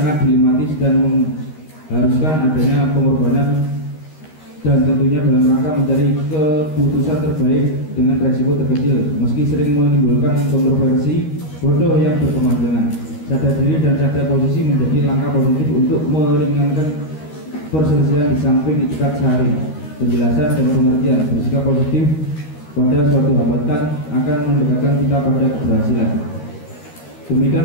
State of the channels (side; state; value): right; late; 13 ms